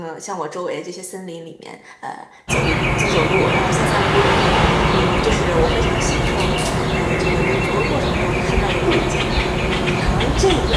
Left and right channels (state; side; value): identical; both; correlation 1.00